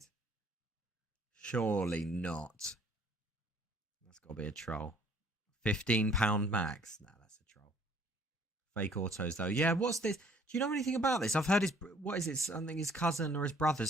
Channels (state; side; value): normal; both; correlation 0.58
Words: Surely not. That's got to be a troll. £15 max. Nah, that's a troll. Fake autos, though. Yeah, what's this? Do you know anything about this? I've heard his... What is it? Something his cousin or his